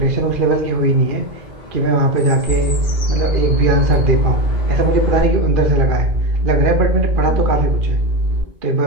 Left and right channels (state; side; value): late; left; 2.4 ms